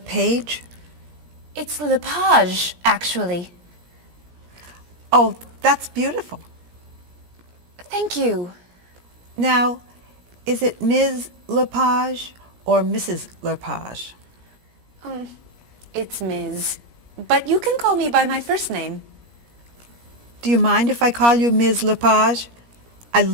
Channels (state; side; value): late; left; 17 ms